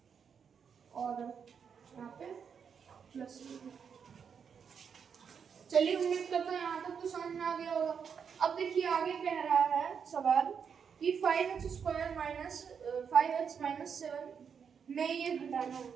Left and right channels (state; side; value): quieter; left; 6.8 dB